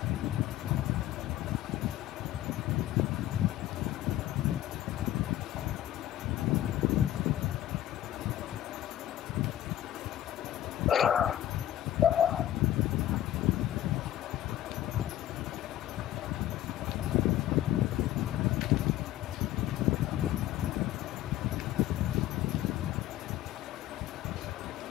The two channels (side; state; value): right; quieter; 13.2 dB